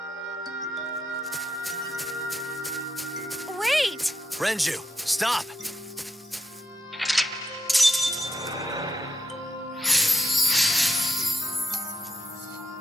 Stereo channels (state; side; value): normal; both; correlation 0.81